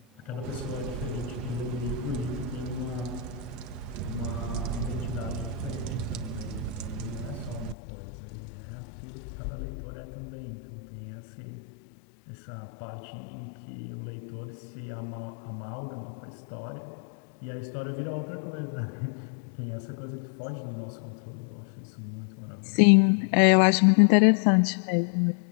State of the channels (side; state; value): right; drops out; at 7.8 s